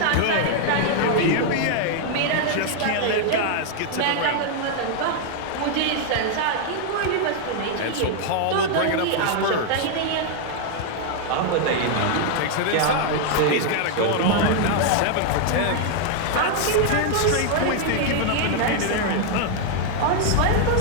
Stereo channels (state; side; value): different; both; correlation 0.00